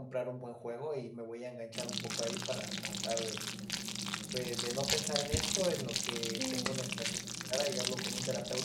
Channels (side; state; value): both; identical; correlation 1.00